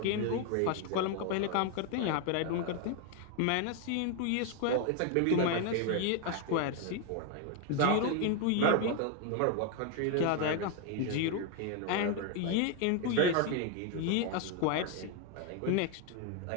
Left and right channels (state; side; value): different; both; correlation 0.01